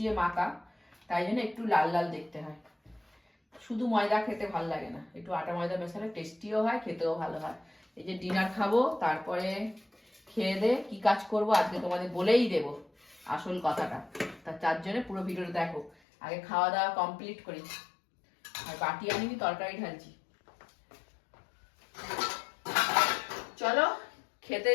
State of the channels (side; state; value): right; drops out; at 16.0 s